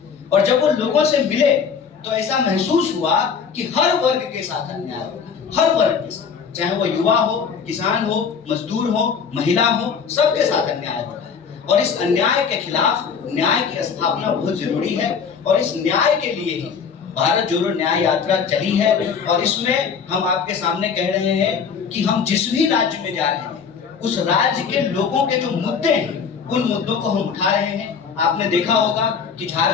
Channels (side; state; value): right; quieter; 6.3 dB